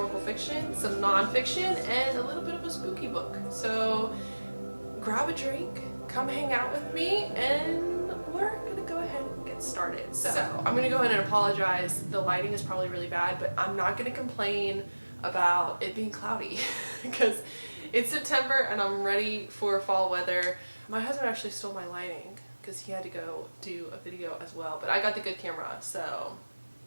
fiction, some non-fiction, and a little bit of a spooky book. So grab a drink, come hang out with me, and we're going to go ahead and get started. So I'm going to go ahead and apologize. The lighting is probably really bad, but I'm not going to complain about it being cloudy because it's September and I'm ready for fall weather. My husband actually stole my lighting because he had to go do a video as well, but I got the good camera, so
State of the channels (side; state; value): both; inverted; correlation -1.00